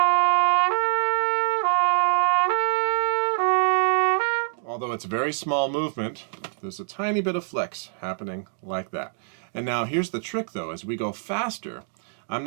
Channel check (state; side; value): silent; left; digital silence